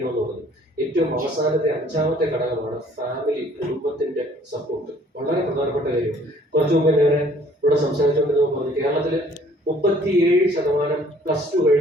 പറഞ്ഞു. ഏറ്റവും അവസാനത്തെ 5ാമത്തെ ഘടകമാണ് ഫാമിലി, കുടുംബത്തിന്റെ സപ്പോർട്ട്. വളരെ പ്രധാനപ്പെട്ട കാര്യം. കുറച്ചു മുമ്പ് ഞാൻ ഇവിടെ സംസാരിച്ചുകൊണ്ടിരുന്നപ്പോൾ പറഞ്ഞു, കേരളത്തില് 37% +2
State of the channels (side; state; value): both; normal; correlation 0.57